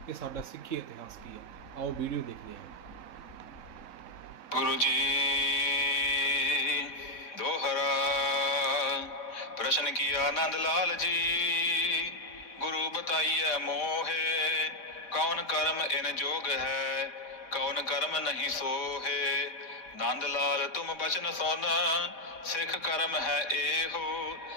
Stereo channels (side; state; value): right; late; 3.6 ms